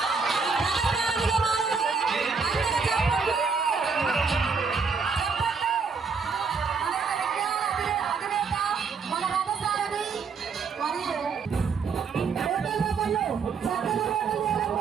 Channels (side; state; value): left; quieter; 5.3 dB